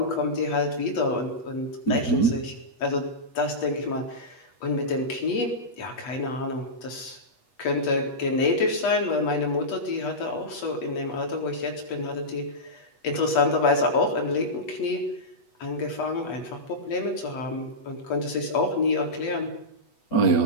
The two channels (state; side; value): late; right; 8.2 ms